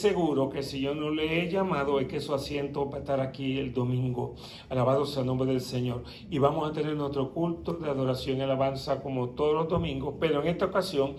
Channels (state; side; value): identical; both; correlation 1.00